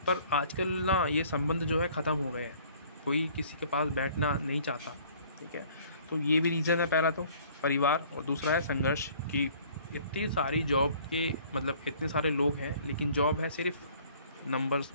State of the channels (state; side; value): inverted; both; correlation -0.54